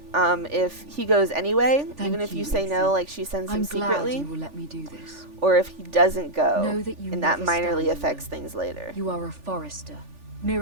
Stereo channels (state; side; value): late; left; 3.4 ms